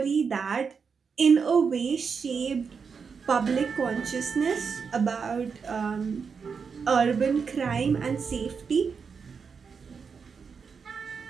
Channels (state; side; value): quieter; left; 5.8 dB